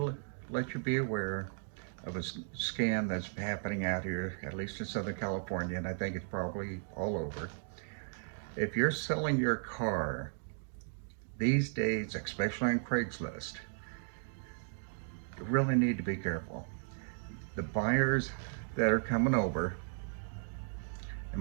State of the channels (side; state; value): left; silent; digital silence